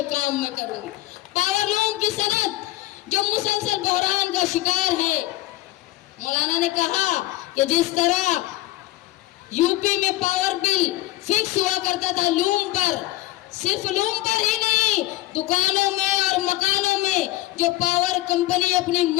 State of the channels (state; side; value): quieter; right; 17.0 dB